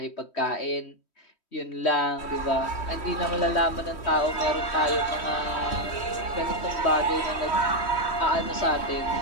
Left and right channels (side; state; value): right; late; 3.1 ms